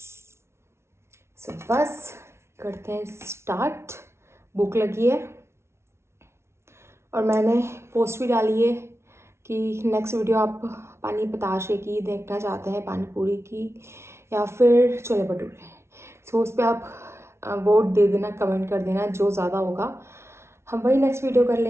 सो बस करते हैं स्टार्ट। भूख लगी है और मैंने पोस्ट भी डाली है कि नेक्स्ट वीडियो आप पानी बताशे की देखना चाहते हैं, पानी पूरी की या फिर छोले भटूरे। सो उस पर आप वोट दे देना, कमेंट कर देना, जो ज़्यादा होगा हम वही नेक्स्ट वीडियो कर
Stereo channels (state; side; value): late; left; 0.13 ms